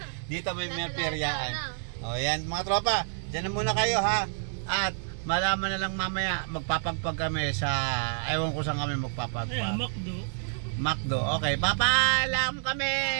Dito may peryaan. O yan mga tropa, dyan na muna kayo ha. At malaman na lang mamaya, magpapagpag kami sa, ewan ko saan kami magpapagpag. Ayan, Macdo. Macdo, okay, papaalam kami!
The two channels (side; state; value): left; silent; digital silence